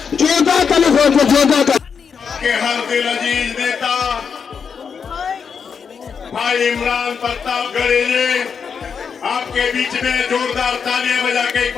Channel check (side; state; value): right; quieter; 6.4 dB